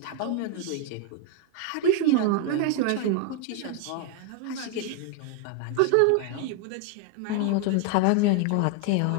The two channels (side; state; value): both; different; correlation 0.01